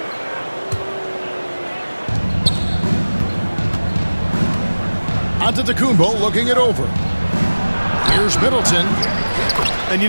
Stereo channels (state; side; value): inverted; both; correlation -1.00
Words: Antetokounmpo looking it over. Here's Middleton. And, you